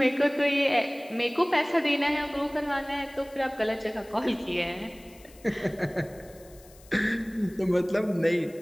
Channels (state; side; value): noise; left; hiss, 25 dB below the sound